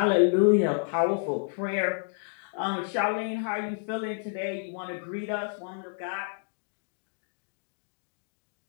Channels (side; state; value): right; silent; digital silence